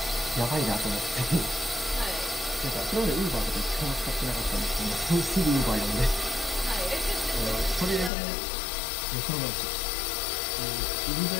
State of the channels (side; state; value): right; drops out; at 8.1 s